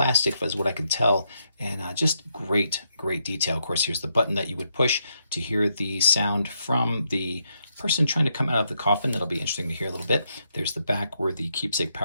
as what I can tell, and just great detail. Of course, here's the button that you would push to hear the sound from the person trying to come out of the coffin. That'll be interesting to hear a little bit. There's the back where the keepsake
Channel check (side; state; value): both; inverted; correlation -0.79